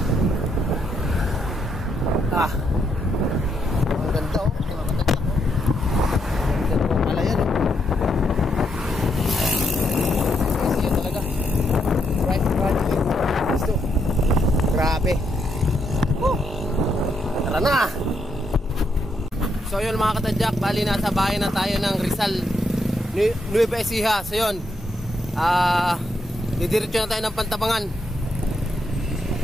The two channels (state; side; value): normal; both; correlation 0.78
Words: Ang ganda oh, mga katadyak oh. Ang ganda po pala yan oh. Grabe. Tara na. So yun mga katadyak, bali nasa bahay na tayo ng Rizal, Nueva Ecija. So yun, didiretso na tayo ng Pantabangan.